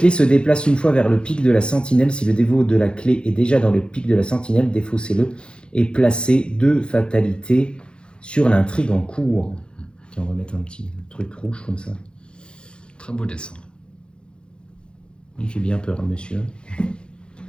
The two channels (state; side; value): late; right; 0.053 ms